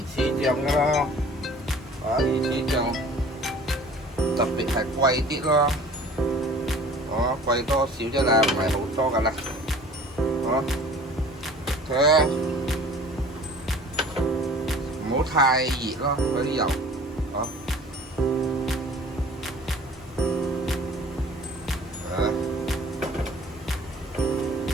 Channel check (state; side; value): normal; both; correlation 0.48